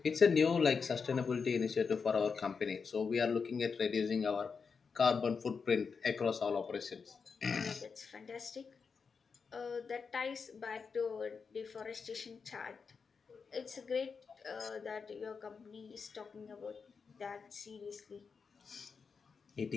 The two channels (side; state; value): right; quieter; 5.5 dB